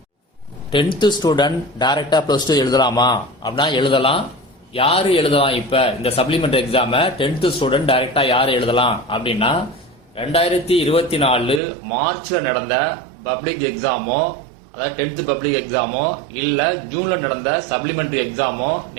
10th ஸ்டூடெண்ட் டைரக்டா +2 எழுதலாமா அப்படின்னா எழுதலாம். யாரு எழுதலாம்? இப்ப இந்த சப்ளிமெண்டரி எக்ஸாம 10th ஸ்டூடெண்ட் டைரக்டா யாரு எழுதலாம் அப்படின்னா 2024 மார்ச்ல நடந்த பப்ளிக் எக்ஸாமோ, அதாவது 10th பப்ளிக் எக்ஸாமோ இல்ல ஜூன்ல நடந்த சப்ளிமெண்டரி எக்ஸாமோ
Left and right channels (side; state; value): left; drops out; at 11.6 s